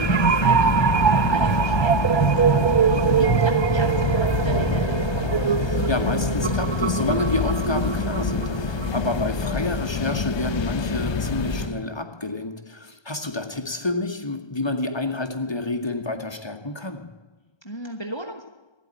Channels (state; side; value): late; right; 1.3 ms